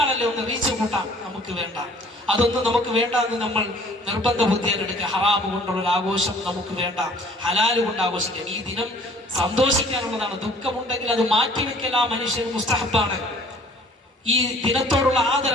ഒന്ന് റീച്ച് കൂട്ടാം, നമുക്ക് വേണ്ട. അതൊന്നും നമുക്ക് വേണ്ട എന്ന് നമ്മൾ നിർബന്ധ ബുദ്ധിയെടുക്കുക. ഹറാമ് കൊണ്ടുള്ള ഒരു ആഘോഷം നമുക്ക് വേണ്ട, ഹലാല് കൊണ്ട് ആഘോഷിക്കാം. ഈ ദിനം സന്തോഷിക്കാനുള്ളതാണ്. ദുഃഖമുണ്ടെങ്കിൽ അത് മാറ്റിവെക്കൽ ആ മനുഷ്യൻ മുസ്തഹബാണ്. ഈ ദിനത്തോടുള്ള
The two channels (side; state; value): both; normal; correlation 0.53